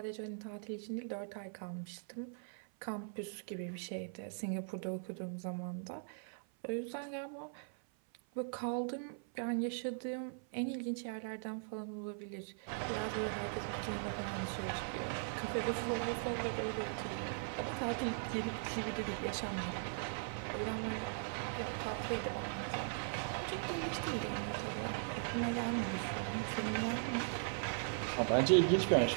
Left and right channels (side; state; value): left; silent; 51 dB below the other